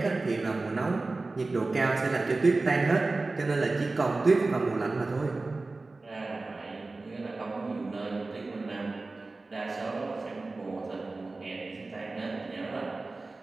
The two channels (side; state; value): left; quieter; 3.4 dB